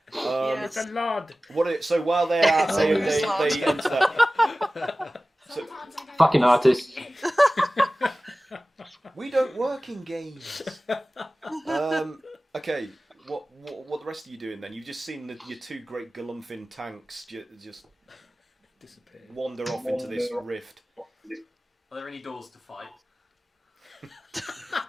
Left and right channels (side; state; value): both; normal; correlation 0.97